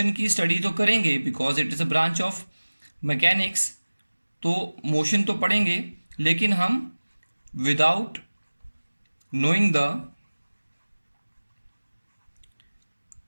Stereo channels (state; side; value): inverted; both; correlation -1.00